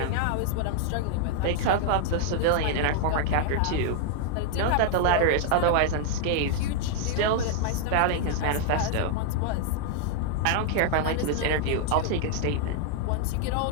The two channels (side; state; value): both; different; correlation 0.00